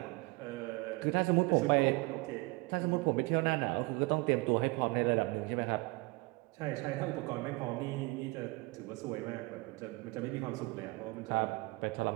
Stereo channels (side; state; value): left; quieter; 25.0 dB